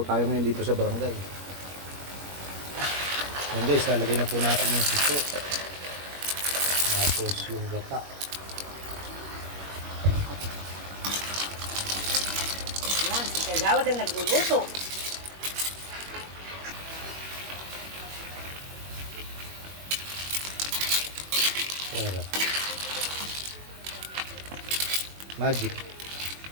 tayo ngayon dito sa barangay. Ayan guys, lalagay na po natin yung suso. Tapos yung gata. Yan, si Kagawad ang nagluluto. Sarap. Magic.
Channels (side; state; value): left; late; 21 ms